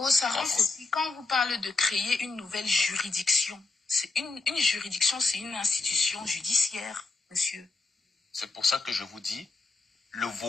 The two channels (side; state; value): right; quieter; 3.8 dB